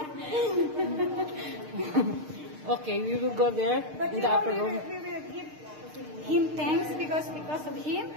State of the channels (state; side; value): late; left; 6.6 ms